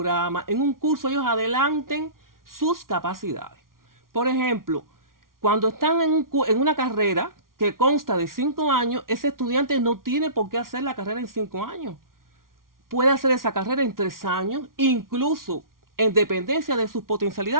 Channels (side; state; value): left; late; 0.92 ms